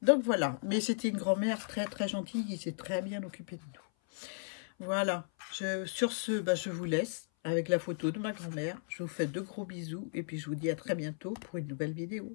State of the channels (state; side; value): silent; right; 54 dB below the other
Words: Donc voilà. Mais c'était une grand-mère très très gentille, qui s'est très bien occupée de nous. Voilà. Sur ce, bah, je vous laisse avec la photo de ma grand-mère. Je vous fais de gros bisous et puis je vous dis à très bientôt pour une nouvelle